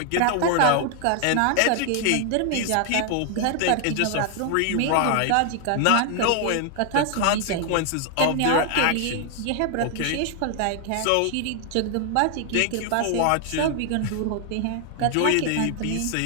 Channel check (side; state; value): both; different; correlation 0.00